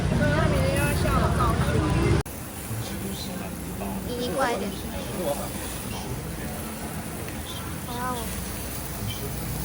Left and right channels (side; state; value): both; identical; correlation 1.00